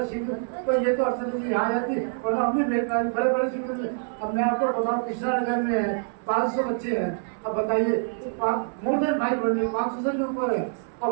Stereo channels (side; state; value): left; silent; 61 dB below the other